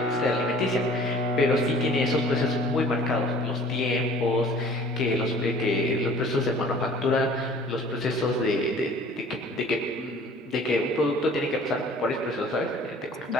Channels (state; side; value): normal; both; correlation 0.49